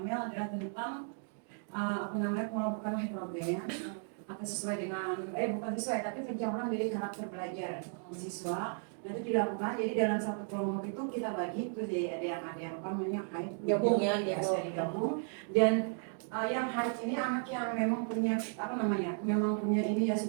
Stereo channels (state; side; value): silent; left; 55 dB below the other